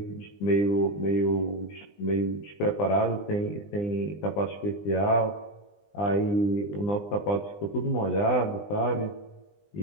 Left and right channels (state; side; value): late; right; 20 ms